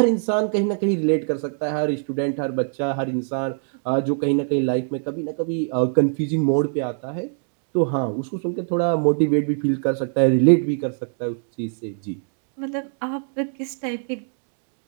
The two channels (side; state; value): left; silent; 63 dB below the other